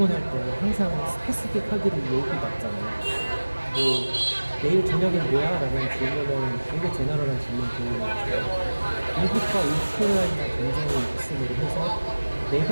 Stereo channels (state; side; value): inverted; both; correlation -1.00